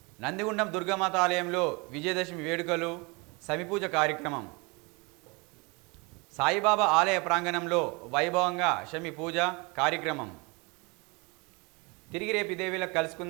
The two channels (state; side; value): quieter; left; 28.4 dB